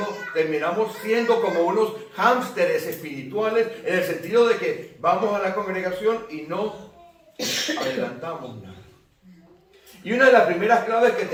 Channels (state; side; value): identical; both; correlation 1.00